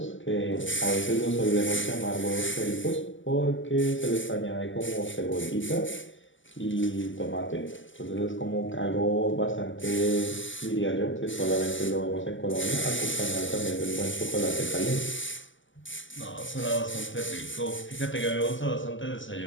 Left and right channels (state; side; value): late; right; 0.55 ms